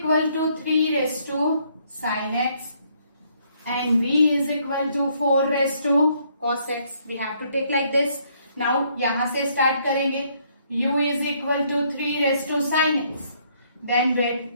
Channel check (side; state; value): both; inverted; correlation -0.68